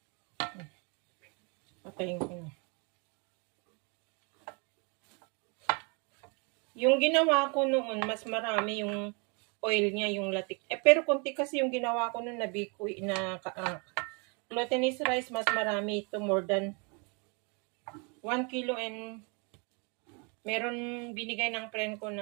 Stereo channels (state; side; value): quieter; left; 33.4 dB